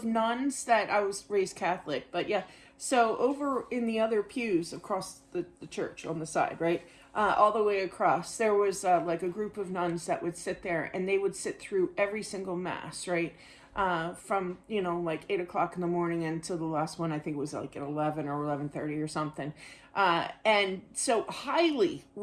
nuns that, I was raised Catholic, but yeah, so over in the other pews across the church on the side, right? All the way across, there was like a group of nuns that would sit there, and they would sit through every single mass, right? From like 8 o'clock in the morning until the last one. I think it was like at 11 or 11:30 or something. And so highly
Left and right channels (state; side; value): identical; both; correlation 1.00